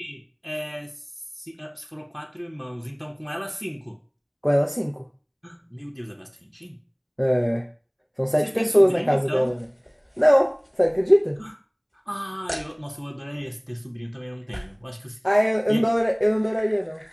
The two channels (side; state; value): both; identical; correlation 1.00